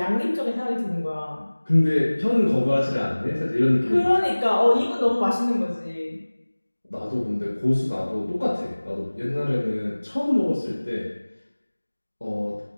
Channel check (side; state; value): both; inverted; correlation -1.00